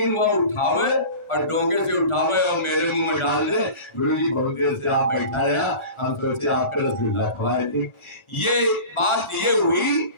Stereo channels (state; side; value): late; right; 1.4 ms